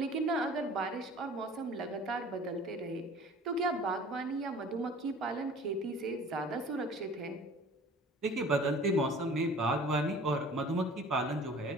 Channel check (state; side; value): normal; both; correlation 0.47